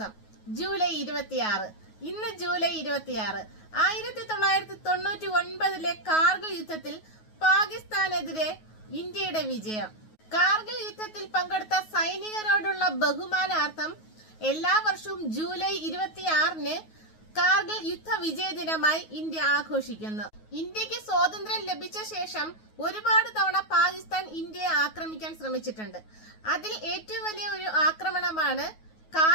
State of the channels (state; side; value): late; right; 9.4 ms